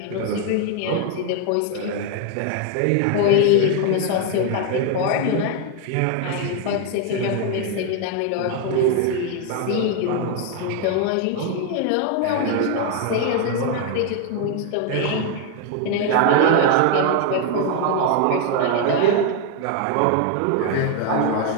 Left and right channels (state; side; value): different; both; correlation 0.01